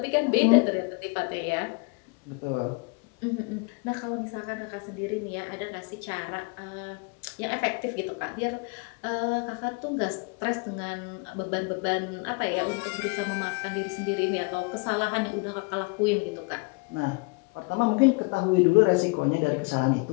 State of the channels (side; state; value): right; quieter; 30.6 dB